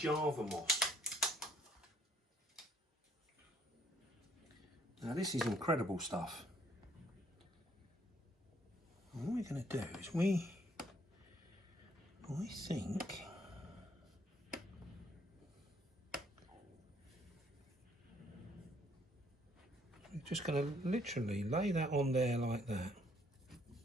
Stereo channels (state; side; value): normal; both; correlation 0.66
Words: moss. Now this is incredible stuff. And what we're going to do is I think we're just going to literally lay that on there like that,